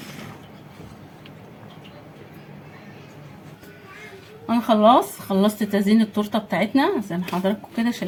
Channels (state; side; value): identical; both; correlation 1.00